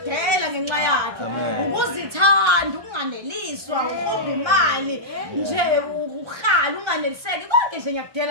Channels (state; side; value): late; left; 1.3 ms